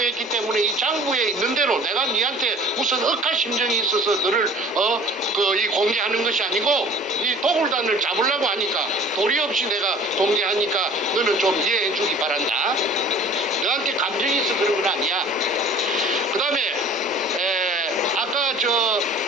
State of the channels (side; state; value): both; normal; correlation 0.46